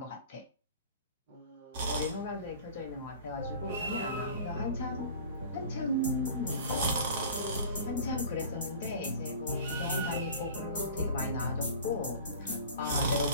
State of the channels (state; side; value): inverted; both; correlation -0.41